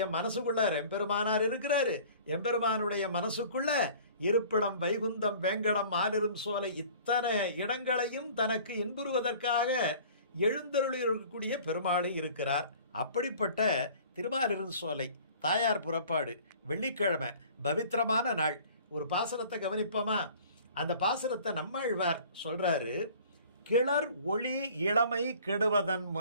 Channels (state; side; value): inverted; both; correlation -0.48